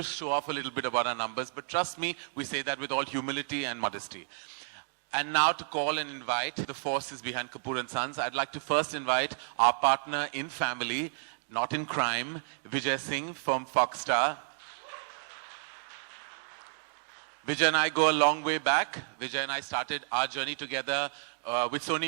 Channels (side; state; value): left; silent; digital silence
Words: show off a little bit about our numbers, but trust me, we say that with all humility and modesty. And now to call and invite the forces behind Kapoor and Sons, I'd like to first invite our partner in family, not in crime, Vijay Singh from Fox Star. Vijay and I go a long way back. Vijay and I started our journey together with